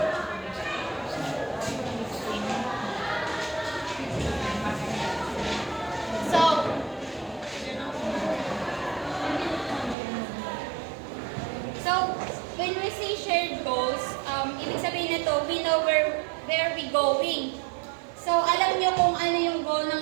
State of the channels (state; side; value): drops out; left; at 10.0 s